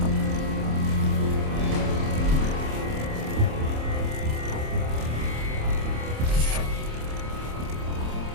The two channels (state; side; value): late; left; 27 ms